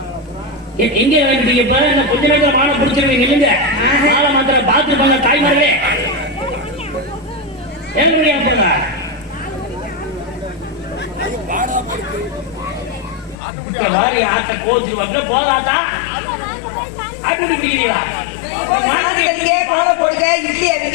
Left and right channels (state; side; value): drops out; right; at 13.4 s